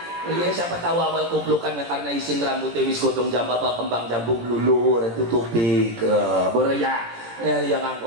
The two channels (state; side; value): late; left; 17 ms